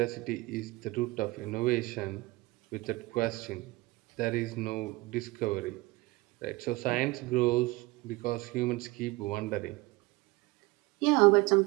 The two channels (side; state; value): left; quieter; 21.9 dB